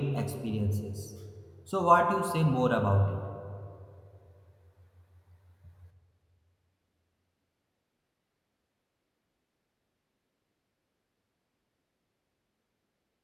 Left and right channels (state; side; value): identical; both; correlation 1.00